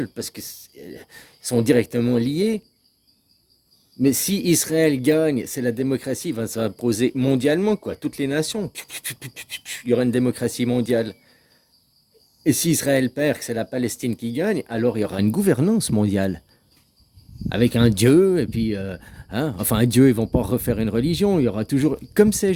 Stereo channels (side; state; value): both; identical; correlation 1.00